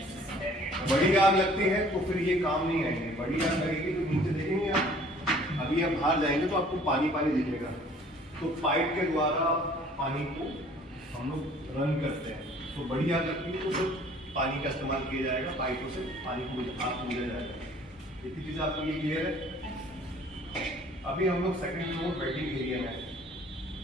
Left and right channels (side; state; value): both; normal; correlation 0.54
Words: बड़ी आग लगती है तो फिर ये काम नहीं आएंगे। बड़ी आग लगेगी तो नीचे देखेंगे आप, अभी आप बाहर जाएंगे तो आपको पानी पानी दिखेगा, तो पाइप के द्वारा पानी को हम लोग रन करते हैं। तो बड़ी आग लगती है तो फिर पानी का इस्तेमाल किया जाएगा, पाइपों से पानी को आग को बुझाया जाएगा। इतनी चीज़ आपको ये क्लियर है? अभी हम लोग सेकंड फ्लोर वेटिंग एरिया में है।